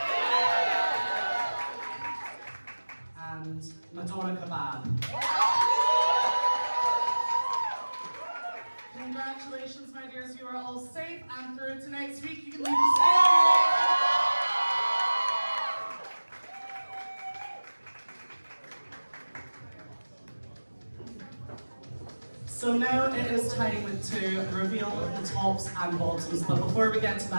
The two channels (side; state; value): both; inverted; correlation -1.00